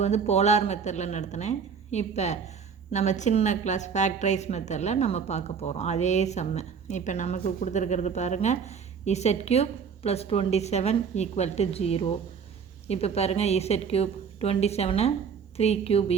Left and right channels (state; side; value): quieter; left; 6.4 dB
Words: வந்து போலார் மெத்தடில் நடத்தினேன். இப்போ நம்ம சின்ன கிளாஸ் ஃபேக்டரைஸ் மெத்தடில் நம்ம பார்க்க போகிறோம் அதே சம்மு. இப்போ நமக்கு கொடுத்துருக்கிறது பாருங்கள், Z³ + 27 = 0. இப்போ பாருங்கள், Z³ 27 3³ =